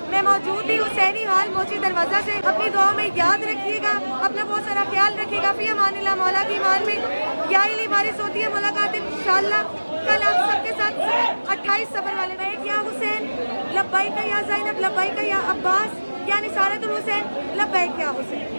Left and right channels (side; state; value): both; inverted; correlation -1.00